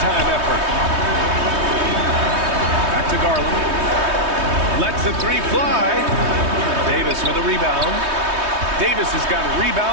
time effort. Back to Garland. Lets the three fly. Davis with a rebound. Davis has got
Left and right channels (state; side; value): late; left; 3.2 ms